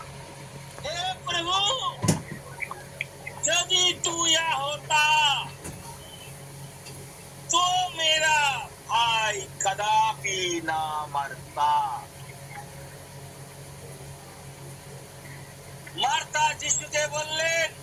हे प्रभु, यदि तू यहाँ होता तो मेरा भाई कदापि ना मरता। मार्था যিশুকে বললেন,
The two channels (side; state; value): both; identical; correlation 1.00